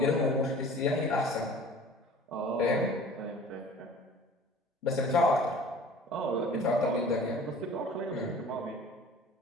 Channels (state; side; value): normal; both; correlation 0.45